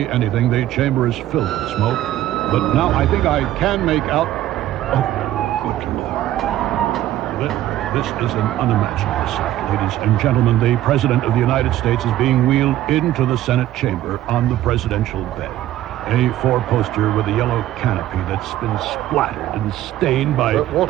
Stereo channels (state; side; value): quieter; left; 13.6 dB